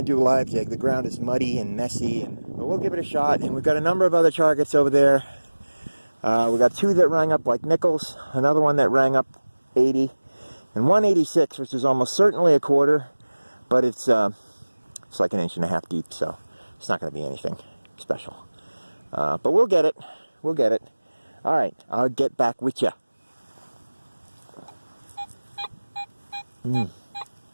to do a live dig. The ground is muddy and messy, but we'll give it a shot. And we've got a number of other targets over there. We got 2 that rang up like nickels, another one that rang up 80, and 186, which is almost certainly a quarter, but it's like 1.5 inches deep, so it's not going to be anything special. But we'll get it. We'll get it. All right, I'll get back with you.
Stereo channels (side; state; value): both; inverted; correlation -1.00